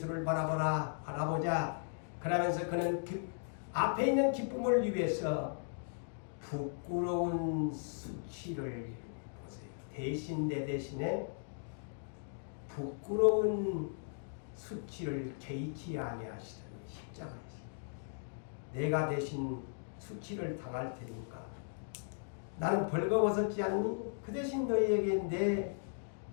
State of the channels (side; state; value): right; silent; digital silence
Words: 바라보자. 그러면서 그는 앞에 있는 기쁨을 위해서 부끄러운 수치를 보세요. 대신 내 대신에 부끄러운 수치를 개의치 아니하시더니 십자가에서 내가 대신 수치를 당할 테니까 나는 벌거벗었지 않니? 그 대신 너희에게 내